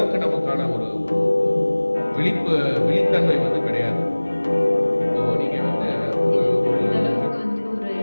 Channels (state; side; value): inverted; both; correlation -1.00